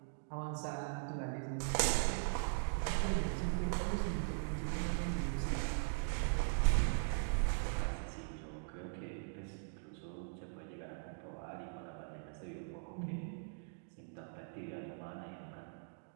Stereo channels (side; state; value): left; silent; digital silence